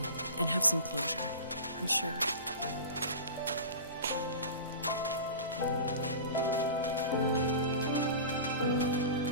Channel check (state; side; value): inverted; both; correlation -0.33